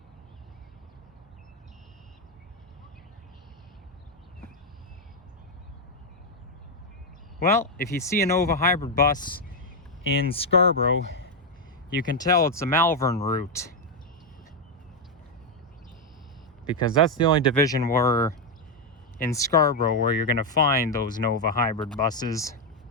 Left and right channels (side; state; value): both; normal; correlation 0.03